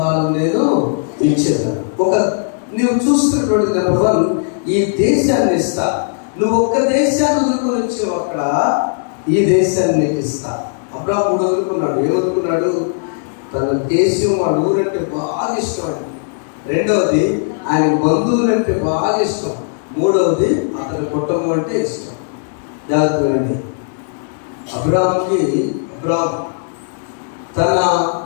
నేను ఇచ్చేదాను. నీవు చూస్తున్నటువంటి నెంబర్ 1 ఈ దేశాన్ని ఇస్తా. నువ్వు ఒక్క దేశాన్ని వదులుకొని వచ్చావు, అక్కడ ఈ దేశాన్ని నీకు ఇస్తా. అబ్రాహాము 3 వదులుకున్నాడు. ఏమనుకున్నాడు? తన దేశం, వాడు ఊరంటే బాగా ఇష్టం అండి. రెండవది ఆయన బంధువులంటే బాగా ఇష్టం. మూడవది అతని కుటుంబం అంటే ఇష్టం. జాగ్రత్తగా అబ్రాహాము తన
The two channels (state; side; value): silent; right; digital silence